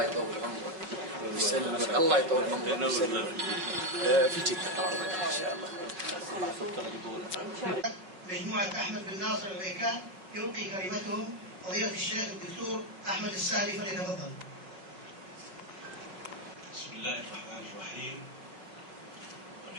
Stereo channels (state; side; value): late; left; 5.4 ms